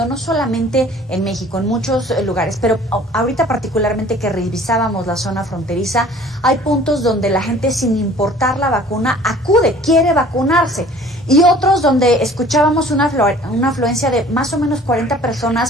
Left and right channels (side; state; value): both; normal; correlation 0.50